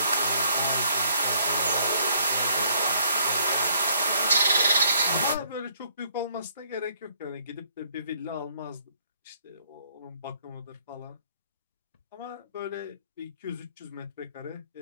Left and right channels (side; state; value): both; inverted; correlation -0.66